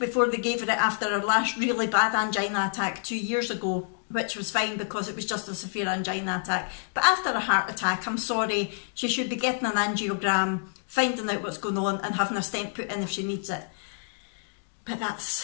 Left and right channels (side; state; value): right; silent; digital silence